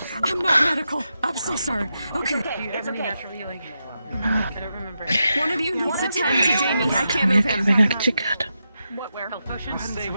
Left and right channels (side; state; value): both; inverted; correlation -0.87